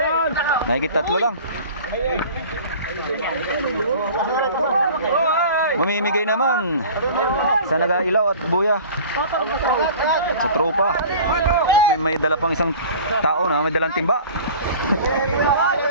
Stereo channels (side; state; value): both; inverted; correlation -0.42